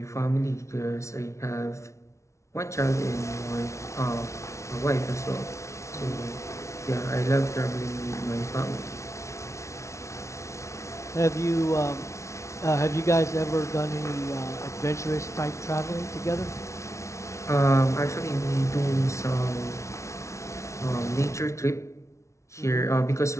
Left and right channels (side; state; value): right; late; 0.14 ms